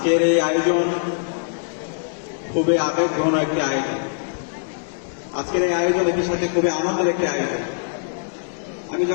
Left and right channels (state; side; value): silent; right; digital silence